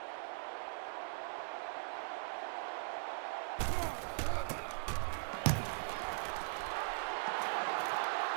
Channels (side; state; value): left; silent; digital silence